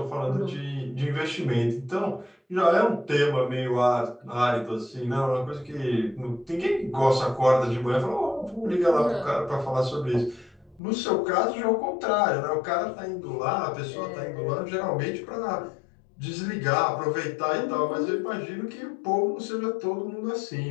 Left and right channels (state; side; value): drops out; right; at 10.8 s